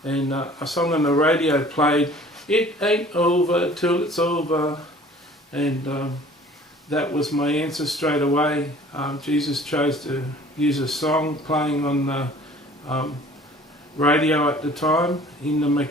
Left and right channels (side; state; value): both; normal; correlation 0.50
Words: And a song on the radio played, "It ain't over till it's over," and that was my answer straight away. Jesus chose to use a song playing on the radio at the time in the